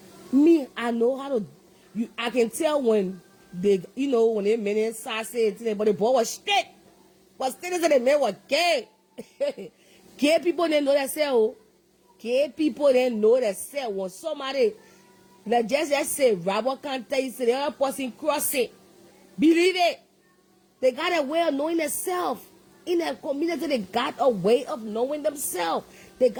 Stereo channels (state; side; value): identical; both; correlation 1.00